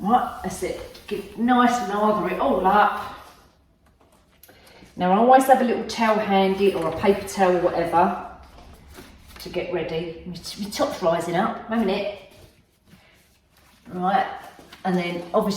that's it. Get nice and lather it all up. Now I always have a little towel handy or a paper towel or whatever to get ready. My top's rising up, a minute. Right, and then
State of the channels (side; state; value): both; identical; correlation 1.00